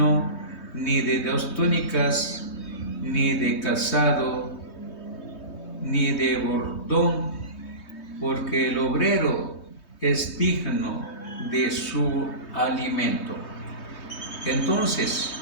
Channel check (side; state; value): right; late; 3.2 ms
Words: ni de 2 túnicas, ni de calzado, ni de bordón, porque el obrero es digno de su alimento. Entonces